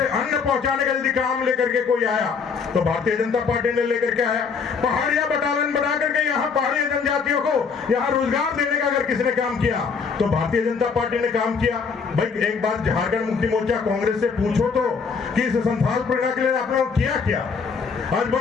अन्न पहुंचाने का यदि काम लेकर के कोई आया तो भारतीय जनता पार्टी ने लेकर के आया। पहाड़िया बटालियन बना करके यहाँ पहाड़ी जनजातियों को यहाँ रोजगार देने का अगर किसने काम किया तो भारतीय जनता पार्टी ने काम किया। भाई एक बार झारखंड मुक्ति मोर्चा कांग्रेस से पूछो तो कि इस संथाल परगना के लिए आपने किया क्या? आज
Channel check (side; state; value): right; quieter; 5.5 dB